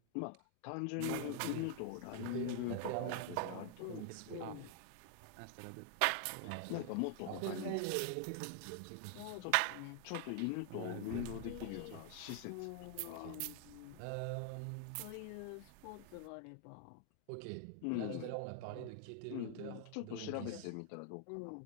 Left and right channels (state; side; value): different; both; correlation 0.00